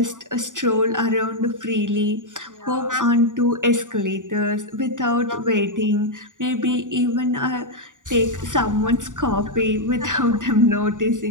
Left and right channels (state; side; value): late; left; 0.87 ms